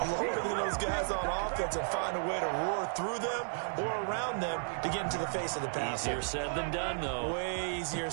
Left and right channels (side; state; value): left; silent; digital silence